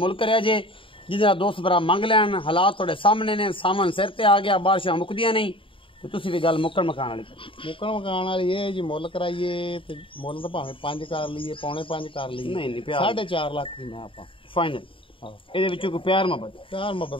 है जे जिहदा दोस्त भरा मंग लैन। हालात थोड़े सामने ने, सामन सिर ते आ गया, बारिशां मुकदियां नहीं ते तुसीं भी गल मुक्कण मकान वाली मुकान वाली ये जी मुल कराइए ते मुल तो भावें 5 कर लीए, 4.5 कर लीए, नहीं प्यार 4.5 लाख दी मैं आपां फाइनल। ਇਹਦੇ ਵਿੱਚੋਂ ਕੋਈ ਪਿਆਰ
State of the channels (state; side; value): late; right; 0.25 ms